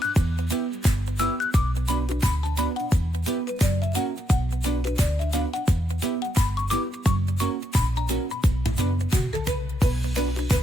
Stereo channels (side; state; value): both; normal; correlation 0.80